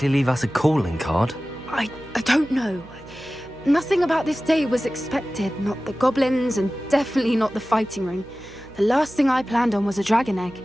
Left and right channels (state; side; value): noise; right; hum, 21 dB below the sound